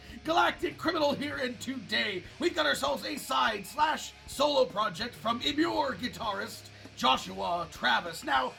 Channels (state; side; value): identical; both; correlation 1.00